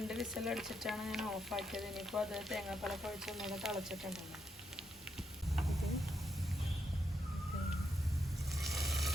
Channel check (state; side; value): normal; both; correlation 0.80